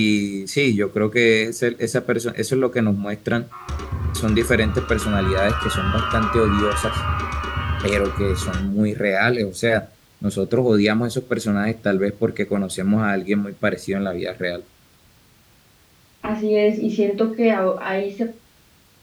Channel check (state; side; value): identical; both; correlation 1.00